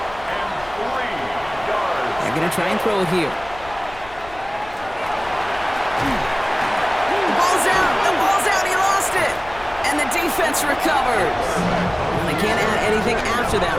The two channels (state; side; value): noise; left; rumble, 19 dB below the sound